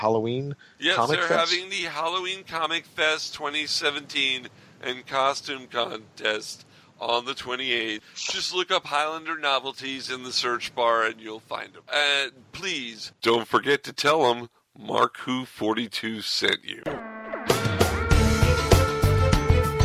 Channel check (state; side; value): identical; both; correlation 1.00